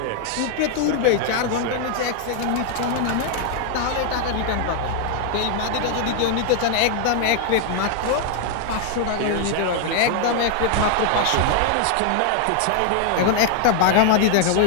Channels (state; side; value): different; both; correlation 0.00